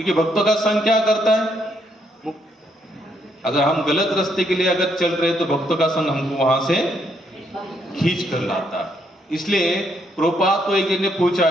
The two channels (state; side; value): normal; both; correlation 0.73